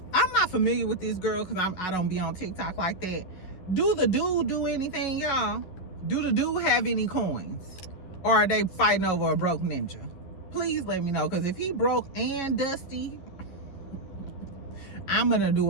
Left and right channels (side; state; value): right; late; 11 ms